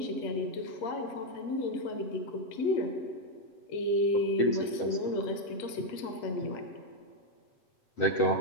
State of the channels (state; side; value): late; right; 7.8 ms